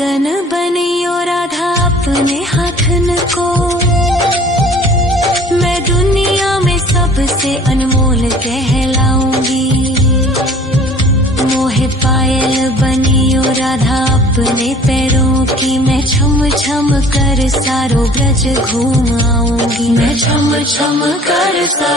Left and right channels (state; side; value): normal; both; correlation 0.50